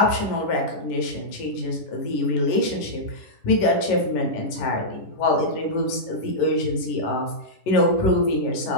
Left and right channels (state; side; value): late; right; 10 ms